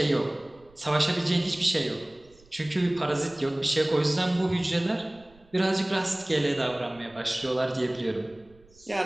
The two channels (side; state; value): right; noise; rumble, 28 dB below the sound